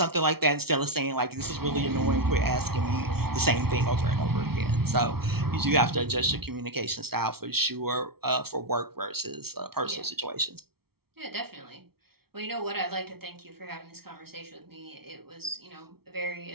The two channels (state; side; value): late; left; 0.95 ms